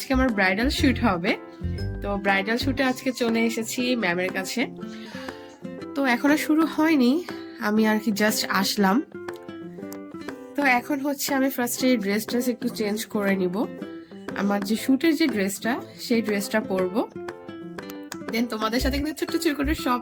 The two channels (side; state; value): both; identical; correlation 1.00